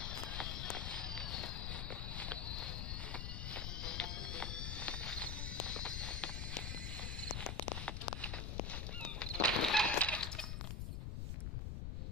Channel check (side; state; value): left; noise; rumble, 2 dB below the sound